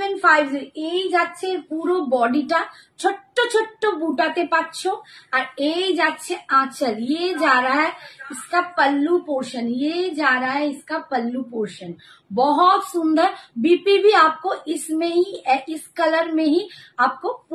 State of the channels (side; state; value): both; identical; correlation 1.00